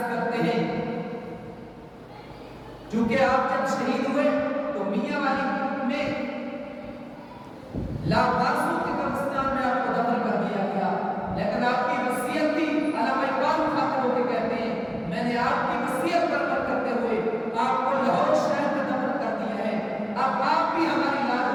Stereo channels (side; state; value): both; identical; correlation 1.00